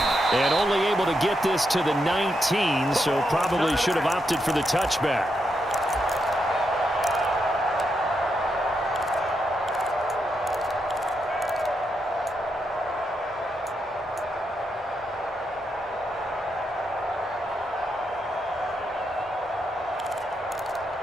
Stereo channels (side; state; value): both; normal; correlation 0.82